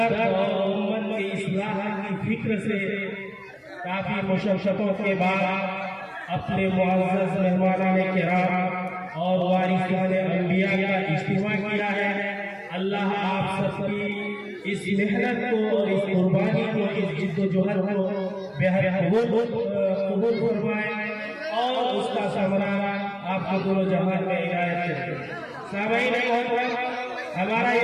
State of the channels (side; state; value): both; identical; correlation 1.00